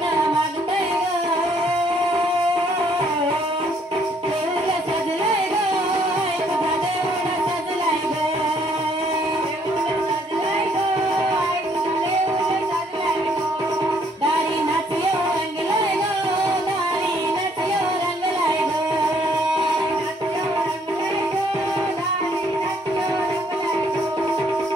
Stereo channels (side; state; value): both; normal; correlation 0.66